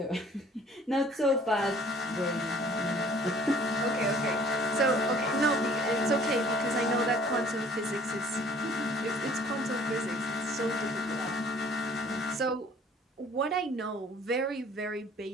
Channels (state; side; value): normal; both; correlation 0.54